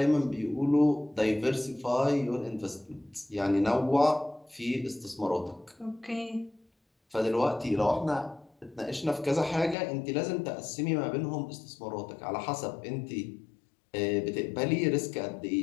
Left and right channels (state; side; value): drops out; right; at 9.8 s